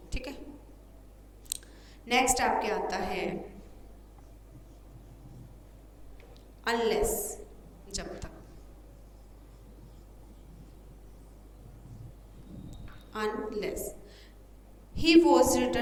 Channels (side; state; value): both; identical; correlation 1.00